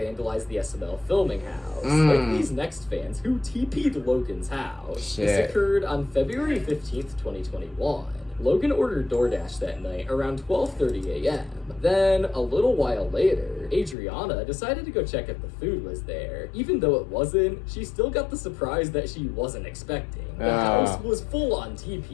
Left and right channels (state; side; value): drops out; right; at 14.0 s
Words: the SML filming house, like these next fans who TP'd Logan's house. Shit. This occurred on February 15th, 2021. Logan ordered DoorDash that night around 12:30 a.m. Then, a little while later, Adriana decided to go check if the food was there. Even though it wasn't, she still got the surprise that she wasn't expecting. The house was full on